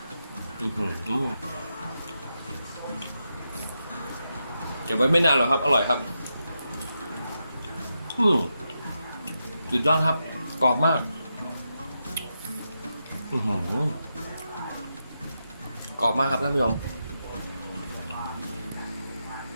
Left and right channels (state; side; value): inverted; both; correlation -0.86